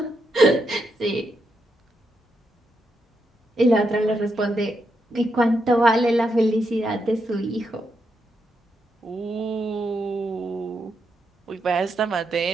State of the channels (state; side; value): normal; both; correlation 0.82